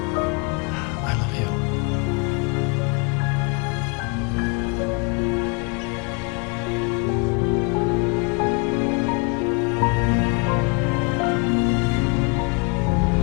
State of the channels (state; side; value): quieter; right; 32.9 dB